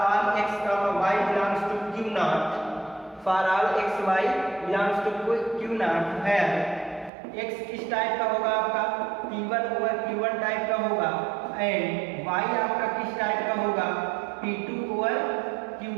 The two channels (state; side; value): drops out; left; at 7.1 s